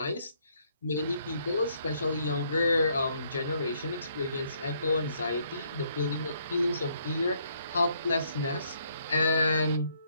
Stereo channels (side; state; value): both; inverted; correlation -0.70